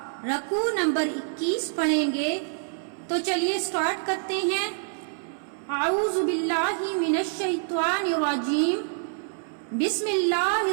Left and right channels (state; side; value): silent; left; 61 dB below the other